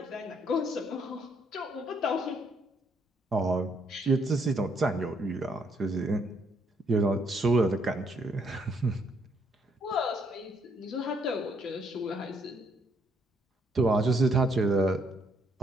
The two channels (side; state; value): both; normal; correlation 0.71